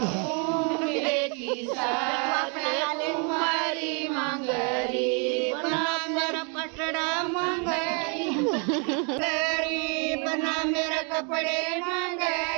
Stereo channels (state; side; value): quieter; left; 36.9 dB